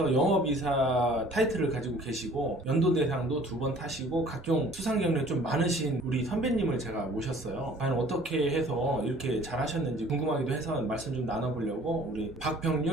영업이사 타이틀을 가지고 계시고 연도 대상도 2번 타시고 각종 수상 경력이 좀 많으신 우리 선배님을 제가 모셨어요. 과연 어떻게 해서 이렇게 잘하셨는지 궁금하기도 해서 말씀 좀 나눠보려고 우리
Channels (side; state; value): both; normal; correlation 0.52